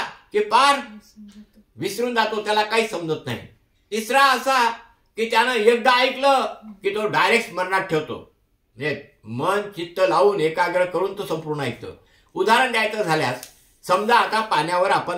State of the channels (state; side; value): identical; both; correlation 1.00